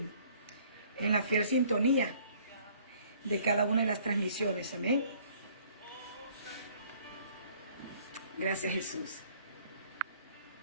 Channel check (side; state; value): both; inverted; correlation -0.58